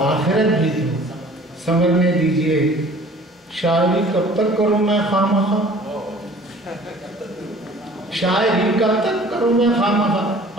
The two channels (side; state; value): both; normal; correlation 0.49